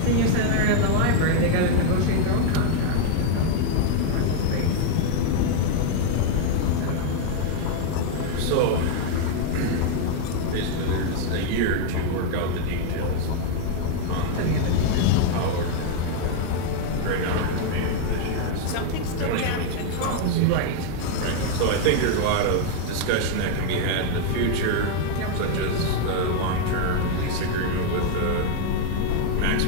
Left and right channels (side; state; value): both; different; correlation 0.00